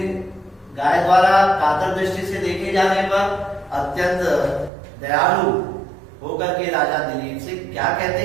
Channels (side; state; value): left; drops out; at 4.7 s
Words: गाय द्वारा कातर दृष्टि से देखे जाने पर अत्यंत दयालु होकर के राजा दिलीप से क्या